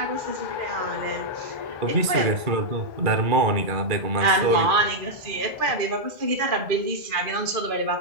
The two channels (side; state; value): left; late; 2.4 ms